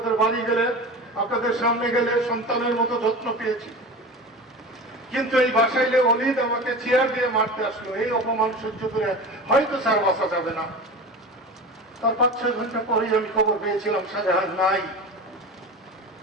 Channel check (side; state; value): both; normal; correlation 0.31